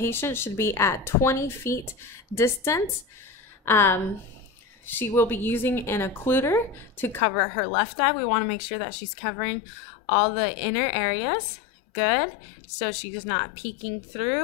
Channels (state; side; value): drops out; right; at 7.2 s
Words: should be at 20 feet distance. She will be using an occluder to cover her left eye. We want to make sure that she's covering all the inner areas. Good. So she's not peeking